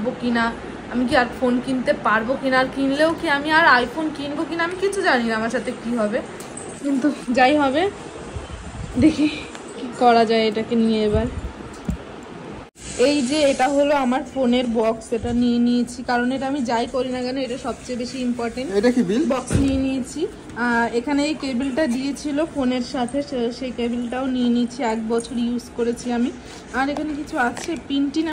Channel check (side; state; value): both; identical; correlation 1.00